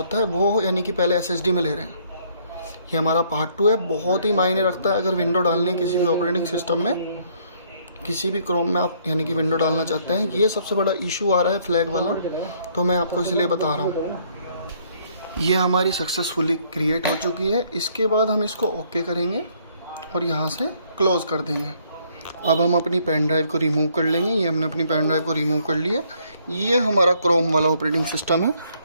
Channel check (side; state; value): both; inverted; correlation -0.66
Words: है वो यानी कि पहले SSD में ले रहे हैं। ये हमारा पार्ट 2 है, बहुत ही मायने रखता है अगर विंडो डालनी है किसी भी ऑपरेटिंग सिस्टम में, किसी भी क्रोम में आप यानी कि विंडो डालना चाहते हैं। ये सबसे बड़ा इशू आ रहा है फ्लैग वाला, तो मैं आपको इसलिए बता रहा हूँ। ये हमारी सक्सेसफुली क्रिएट हो चुकी है। इसके बाद हम इसको ओके करेंगे और यहाँ से क्लोज कर देंगे। अब हम अपनी पेन ड्राइव को रिमूव कर लेंगे। ये हमने अपनी पेन ड्राइव को रिमूव कर लिया। ये हमारा क्रोम वाला ऑपरेटिंग सिस्टम है।